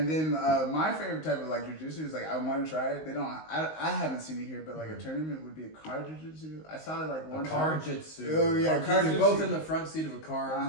then my favorite type of like jujitsu is like I want to try it. They don't. I haven't seen it here, but like a tournament would be a car jujitsu. I saw it like one Car time. jitsu. Oh, yeah, car You're jitsu. both in the front seat of a car,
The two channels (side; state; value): right; late; 19 ms